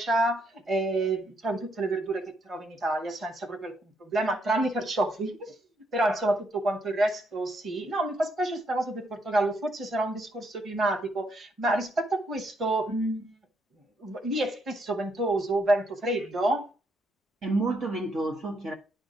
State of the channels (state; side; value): normal; both; correlation 0.74